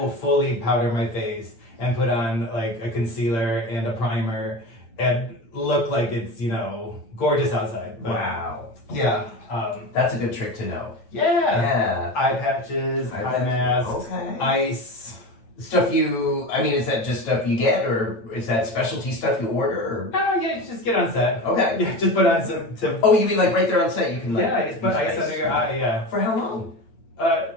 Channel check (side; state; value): right; late; 8.8 ms